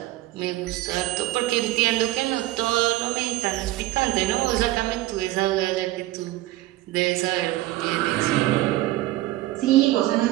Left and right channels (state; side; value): quieter; left; 16.7 dB